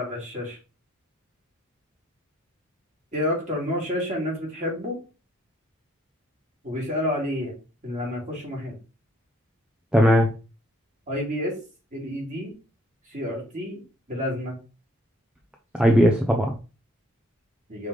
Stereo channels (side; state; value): both; normal; correlation 0.65